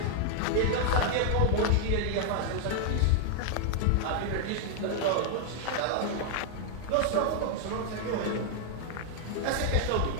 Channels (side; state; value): both; different; correlation 0.00